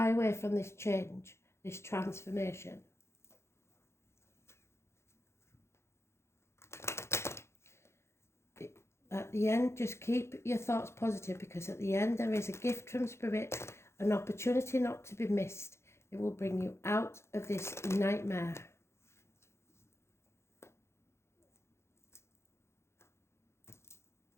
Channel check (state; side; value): late; right; 0.13 ms